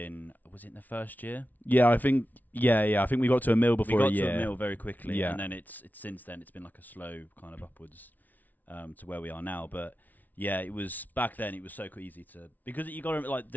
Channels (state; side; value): late; right; 0.079 ms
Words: Was it in the first year? Yeah, I think. Yeah. I think we got to a mill before a year. We got to a mill very quickly, Yeah. and then it's since then it's been like a slow kind of upwards to where we are now. But yeah, it was back then. It was so easy to because you got to like